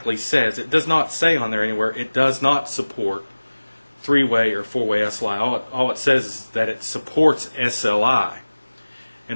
says, it does not say on there anywhere, it does not support 3-way or 4-way SLI. All it says is that it supports SLI.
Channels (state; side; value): inverted; both; correlation -1.00